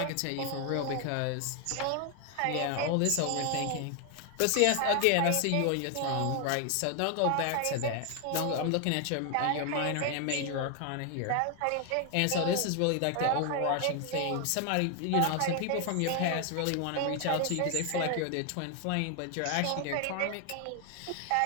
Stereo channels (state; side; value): different; both; correlation 0.00